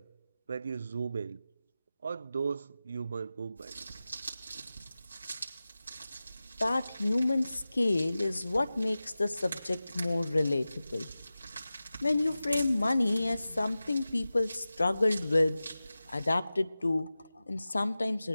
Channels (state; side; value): inverted; both; correlation -0.95